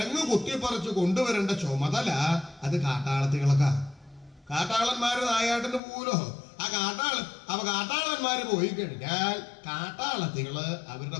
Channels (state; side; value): drops out; right; at 5.8 s